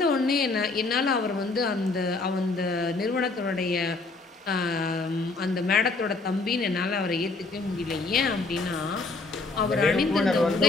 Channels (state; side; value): quieter; right; 3.6 dB